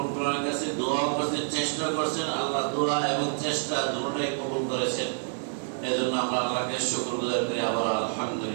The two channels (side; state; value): left; silent; 59 dB below the other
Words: আলামিনের কাছে দোয়া করছেন, চেষ্টা করছেন, আল্লাহ দোয়া এবং চেষ্টা দুটোটাই কবুল করেছেন। এজন্য আমরা আল্লাহকে শুকরগুজার করি আবার